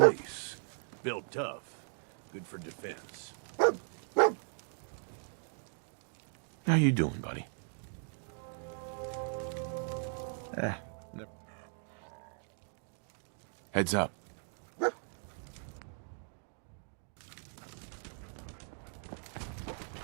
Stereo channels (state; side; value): silent; left; 53 dB below the other